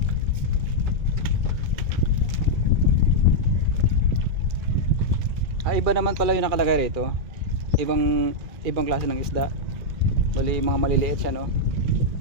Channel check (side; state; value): left; late; 2.3 ms